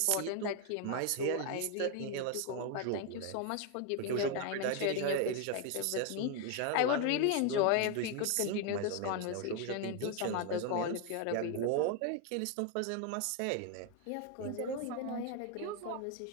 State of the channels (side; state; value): both; different; correlation 0.01